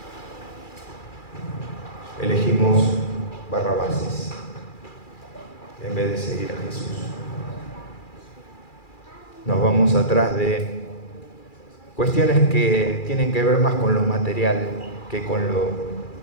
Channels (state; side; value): late; right; 2.4 ms